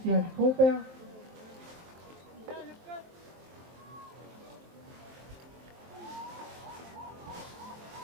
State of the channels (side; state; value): left; late; 23 ms